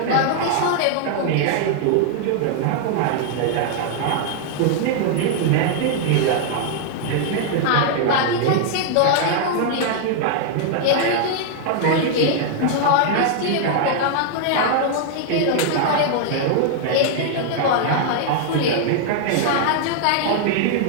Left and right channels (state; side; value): different; both; correlation 0.00